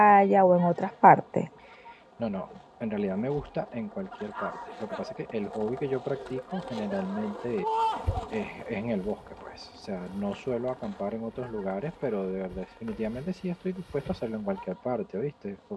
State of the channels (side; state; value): both; identical; correlation 1.00